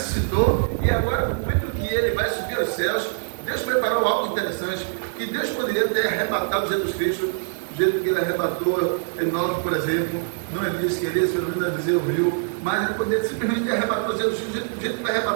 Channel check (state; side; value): silent; left; 63 dB below the other